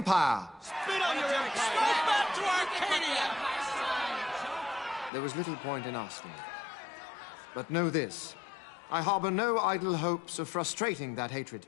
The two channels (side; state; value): right; drops out; at 5.1 s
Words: Spit on your empire! Go back to Arcadia! There was little point in asking. But know this, I harbor no idle hopes of frustrating that hatred.